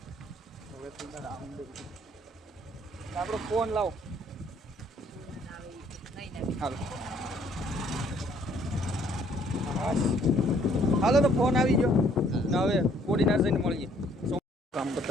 હવે આપણો ફોન લાવો હાલો તો ફોન આવી ગયો ને હવે કોડીનાર જઈને મળીએ કામ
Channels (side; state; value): both; normal; correlation 0.63